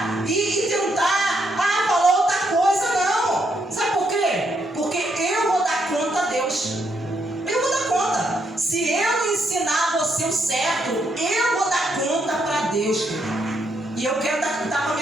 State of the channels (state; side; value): normal; both; correlation 0.76